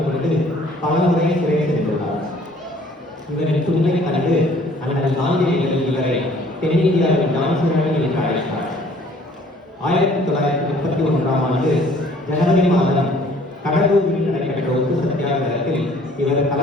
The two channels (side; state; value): both; normal; correlation 0.56